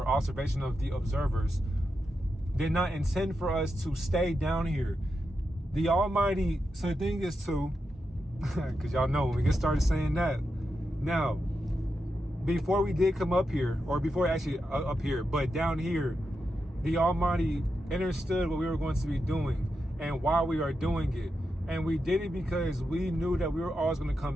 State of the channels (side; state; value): both; normal; correlation 0.87